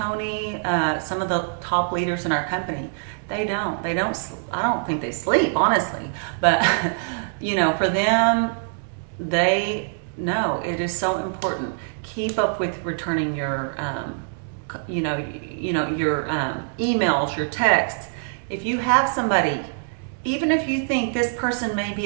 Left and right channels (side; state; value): left; silent; digital silence